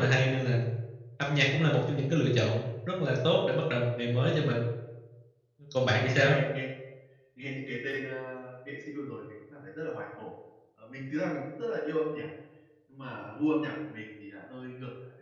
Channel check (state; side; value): identical; both; correlation 1.00